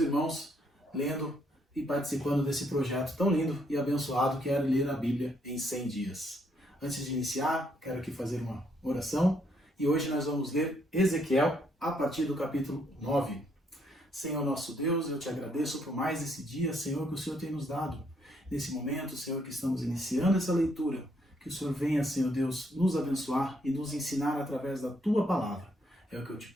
lendo e participando desse projeto tão lindo e abençoado que é ler a Bíblia em 100 dias. Antes de iniciar, quero aqui fazer uma oração e hoje nós vamos ler Ezequiel a partir do capítulo 9. Senhor nosso Deus, eu te agradeço por mais esse dia, Senhor, que o Senhor tem nos dado. Nesse momento, Senhor, que estamos iniciando essa leitura, que o Senhor venha, Senhor Deus, nos abençoar e nos ensinar através da Tua Palavra. É o que eu te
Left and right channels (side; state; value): both; normal; correlation 0.72